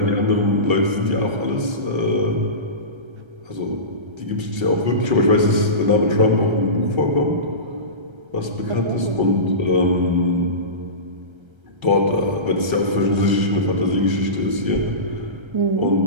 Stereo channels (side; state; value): left; late; 1.3 ms